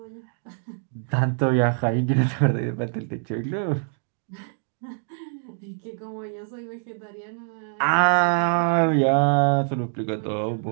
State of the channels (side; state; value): left; silent; digital silence